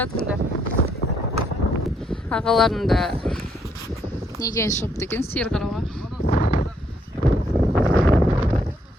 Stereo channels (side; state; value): both; normal; correlation 0.71